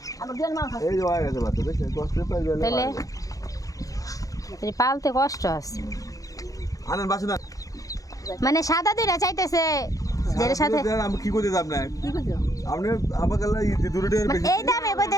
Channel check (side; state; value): right; late; 0.17 ms